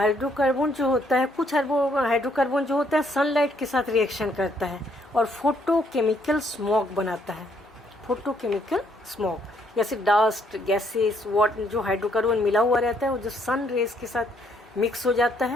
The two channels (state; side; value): normal; both; correlation 0.69